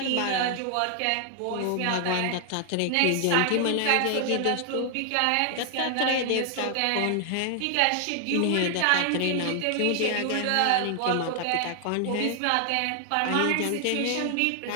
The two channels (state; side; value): different; both; correlation 0.00